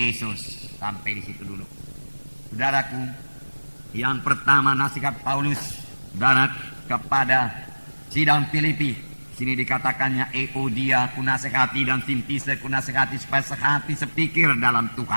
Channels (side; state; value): both; inverted; correlation -1.00